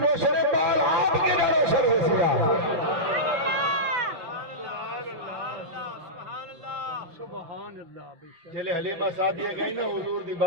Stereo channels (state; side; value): late; left; 5.7 ms